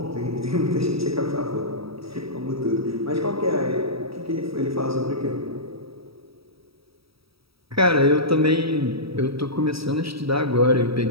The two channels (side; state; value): left; late; 0.77 ms